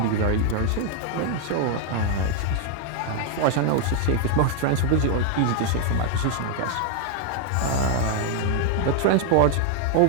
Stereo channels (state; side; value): different; both; correlation 0.00